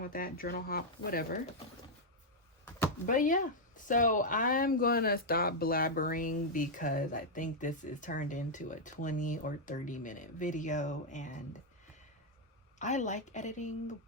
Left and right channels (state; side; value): normal; both; correlation -0.03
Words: with that. Journal hop, whatever. But yeah, so I'm gonna stop blabbering because I think this is turned into a 20 or 30-minute video, and I like editing,